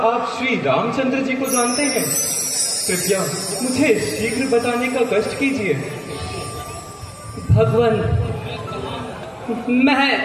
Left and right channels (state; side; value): identical; both; correlation 1.00